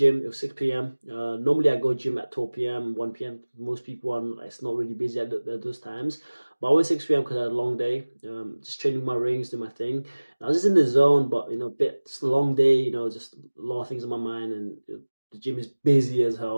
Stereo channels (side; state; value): both; inverted; correlation -1.00